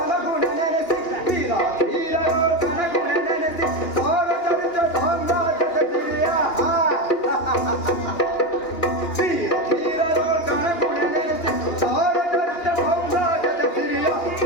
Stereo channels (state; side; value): late; right; 2.9 ms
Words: ನೆನೆಸಿ, ವೀರ ಧೀರರೋ ಕನಗುಣ ನೆನೆಸಿ, ಸಾರ ಚರಿತ ಸಾಮ್ರಾಜ್ಯದ ಸಿರಿಯ. ವೀರ ಧೀರರೋ ಕನಗುಣ ನೆನೆಸಿ, ಸಾರ ಚರಿತ ಸಾಮ್ರಾಜ್ಯದ ಸಿರಿಯ.